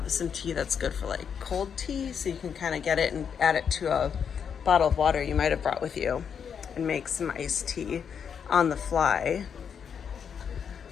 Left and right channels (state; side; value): quieter; right; 7.3 dB